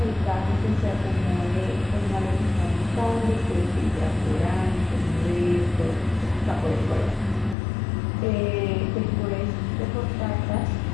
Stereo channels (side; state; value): right; drops out; at 7.6 s